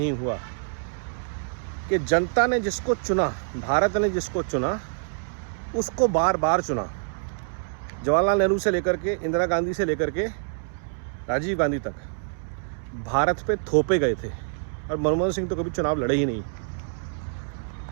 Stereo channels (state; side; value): silent; left; 61 dB below the other